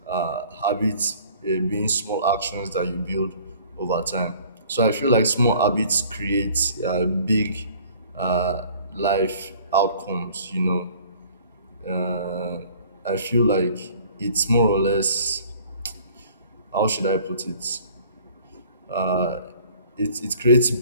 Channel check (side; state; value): both; inverted; correlation -0.52